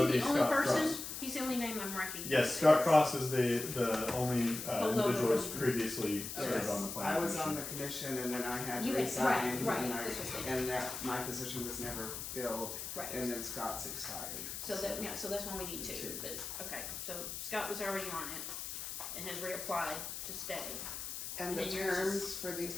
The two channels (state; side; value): noise; left; hiss, 6 dB below the sound